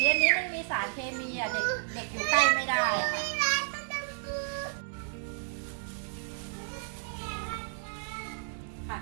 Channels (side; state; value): left; silent; digital silence